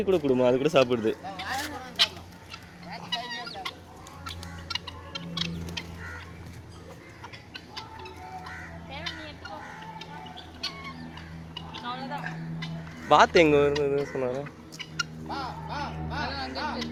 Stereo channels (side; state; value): both; identical; correlation 1.00